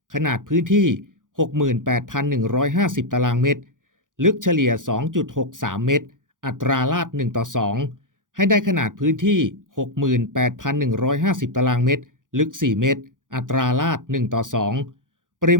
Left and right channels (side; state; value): left; late; 0.88 ms